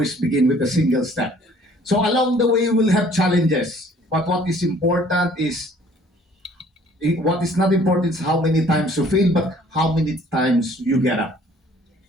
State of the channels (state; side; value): normal; both; correlation 0.56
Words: begin with a single step. So along the way, we'll have challenges. But what is not important is how many times you fail, but how many times you get up.